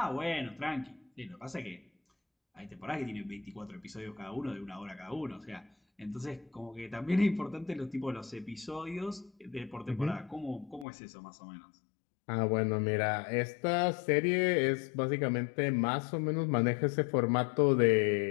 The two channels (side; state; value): right; drops out; at 10.9 s